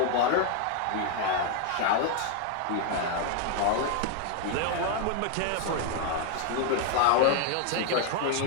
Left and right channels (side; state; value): both; different; correlation 0.00